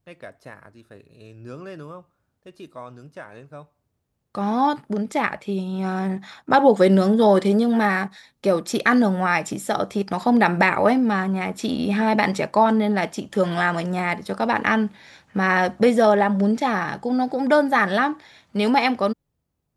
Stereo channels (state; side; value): identical; both; correlation 1.00